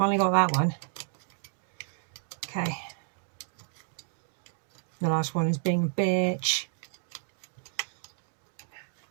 got that one. Okay. The last one is being a bitch.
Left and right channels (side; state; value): left; silent; digital silence